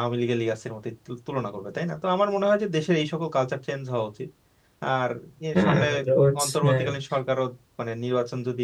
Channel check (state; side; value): identical; both; correlation 1.00